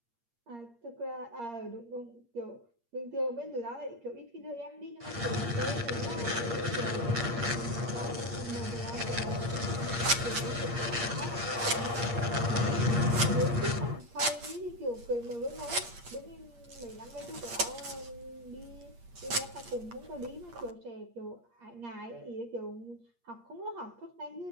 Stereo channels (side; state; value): left; late; 8.5 ms